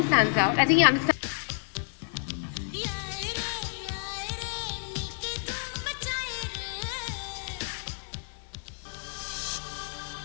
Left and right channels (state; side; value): silent; right; digital silence